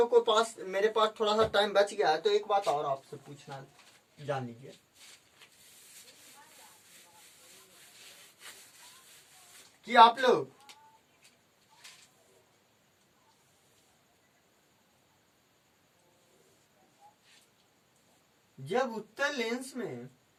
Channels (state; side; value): identical; both; correlation 1.00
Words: को पास, मेरे पास थोड़ा सा टाइम बच गया है, तो एक बात और आपसे पूछना जान लीजिए कि आप लोग जब उत्तल लेंस में